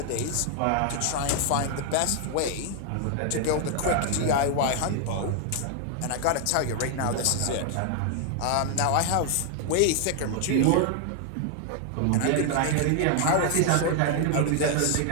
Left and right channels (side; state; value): both; different; correlation 0.00